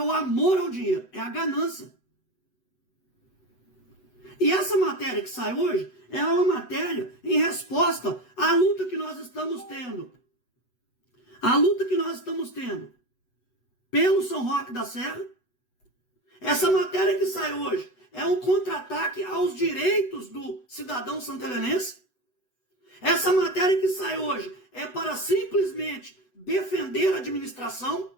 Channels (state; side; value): late; right; 8.0 ms